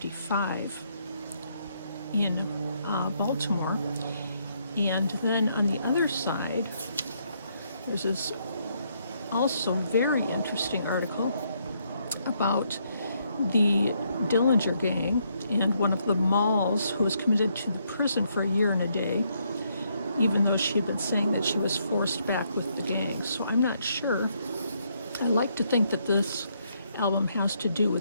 in Baltimore. And then on the other side, there's this also very interesting article about the Dillinger gang and one of the Malls who was committed to the prison for a year and a day, even though she had been saying that she was forced back with the gang. So I'm not sure. I like to think that this album has to do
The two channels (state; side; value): inverted; both; correlation -0.74